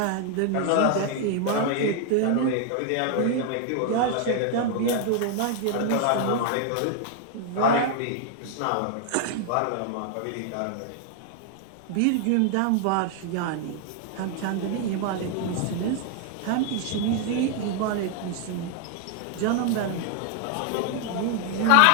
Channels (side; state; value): both; different; correlation 0.00